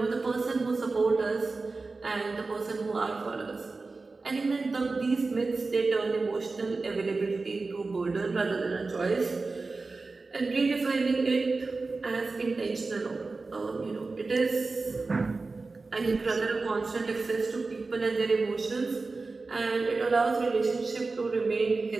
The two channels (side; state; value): left; quieter; 3.8 dB